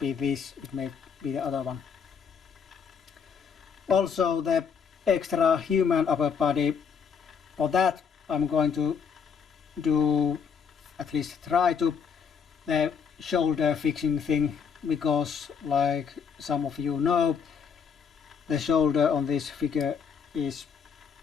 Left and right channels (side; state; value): right; quieter; 6.5 dB